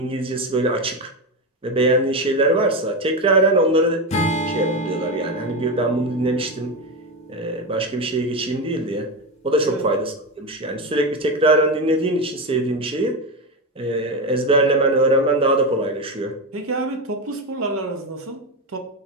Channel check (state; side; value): normal; both; correlation 0.15